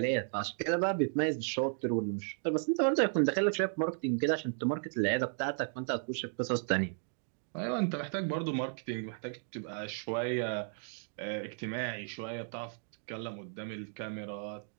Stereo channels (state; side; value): silent; left; 55 dB below the other